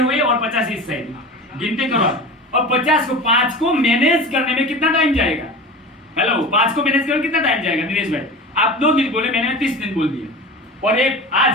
हुए और 50 इस साइड, गिनती करो। और 50 को 5 को मैनेज करने में कितना टाइम जाएगा? हेलो, 5 को मैनेज करने में कितना टाइम जाएगा? दिनेश भाई, आप 2 दिन बोले, मैंने 30 दिन बोल दिया, और एक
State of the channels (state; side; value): normal; both; correlation 0.32